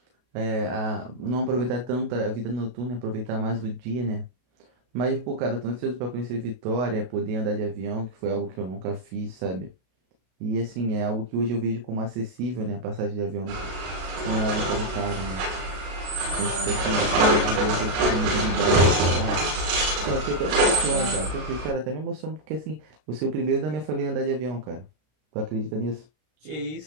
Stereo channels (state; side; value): late; left; 32 ms